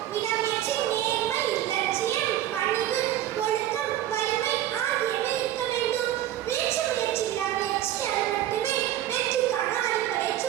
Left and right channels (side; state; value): left; quieter; 12.6 dB